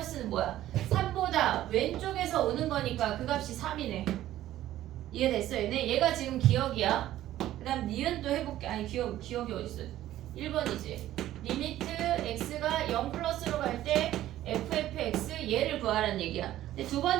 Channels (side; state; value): left; quieter; 13.6 dB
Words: 뭐야? 3보다 왼쪽에서 오는 거니까 그 값이 3이네. 이해됐어 얘네? 얘가 지금 기억이야. 그 다음 니은도 해볼게. 아니 기억이 어딨어? 1번이지. 리미트 x가 0 플러스로 갈 때 fx 얘를 구하라는 얘기야. 근데 두